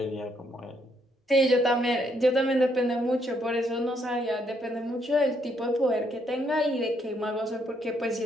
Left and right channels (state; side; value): normal; both; correlation 0.73